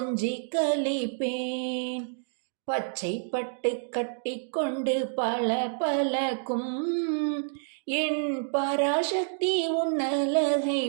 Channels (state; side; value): silent; left; digital silence